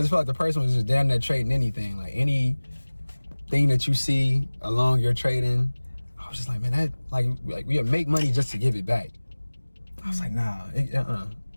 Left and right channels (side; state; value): both; inverted; correlation -1.00